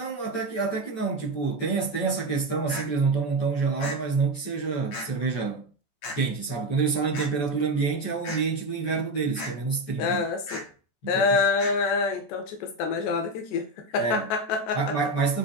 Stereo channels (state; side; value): late; right; 14 ms